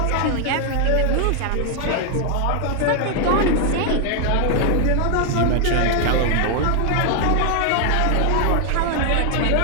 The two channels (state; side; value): different; both; correlation 0.00